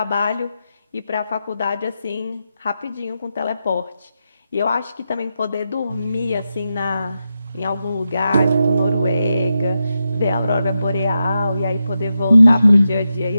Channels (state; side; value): inverted; both; correlation -0.88